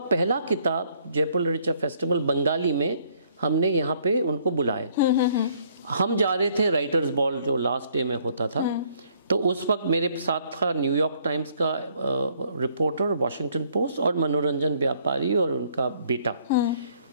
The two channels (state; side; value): inverted; both; correlation -0.64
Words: पहला किताब जयपुर लिटरेचर फेस्टिवल बंगाली में हमने यहाँ पे उनको बुलाए। हम जा रहे थे राइटर्स बॉल जो लास्ट डे में होता था। तो उस वक्त मेरे साथ था न्यूयॉर्क टाइम्स का रिपोर्टर, वॉशिंगटन पोस्ट, और मनोरंजन व्यापारी और उनका बेटा।